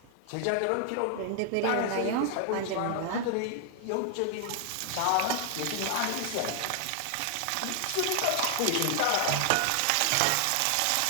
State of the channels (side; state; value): both; different; correlation 0.00